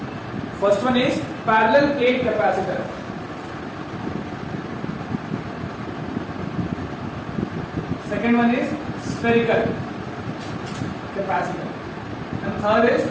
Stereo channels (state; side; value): identical; both; correlation 1.00